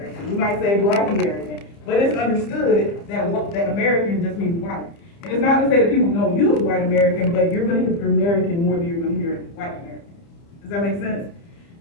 We might say Black American. But it's understood that American just means white. And it's not to say that people don't use white American, but you're going to hear American more than you're going to hear white American. Does that make sense?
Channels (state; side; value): late; right; 30 ms